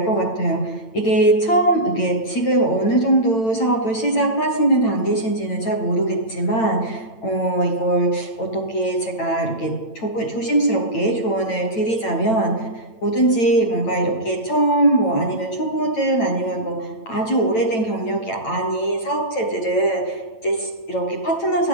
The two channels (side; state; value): right; late; 8.9 ms